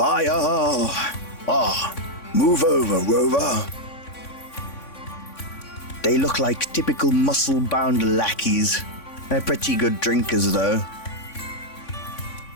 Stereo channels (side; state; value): right; late; 3.5 ms